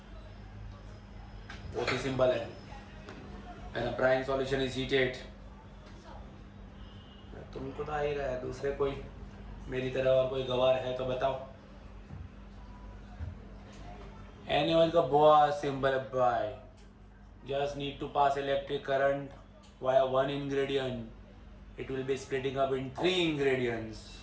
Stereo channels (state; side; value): identical; both; correlation 1.00